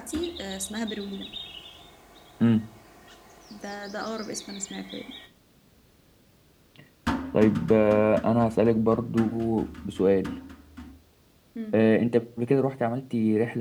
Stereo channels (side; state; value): both; identical; correlation 1.00